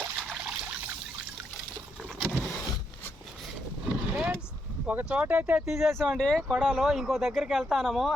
ఫ్రెండ్స్, ఒక చోట అయితే తీసేసామండి కొడాలో, ఇంకో దగ్గరికి వెళ్తాము.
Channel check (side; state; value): both; normal; correlation 0.78